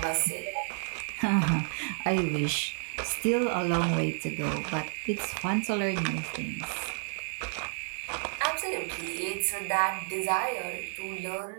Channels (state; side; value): silent; left; 57 dB below the other